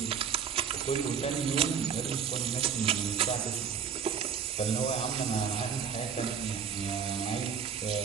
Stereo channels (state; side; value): quieter; left; 7.1 dB